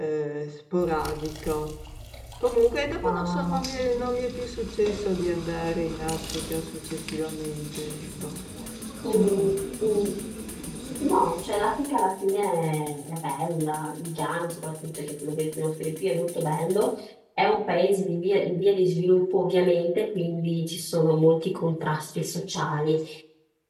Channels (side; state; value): both; identical; correlation 1.00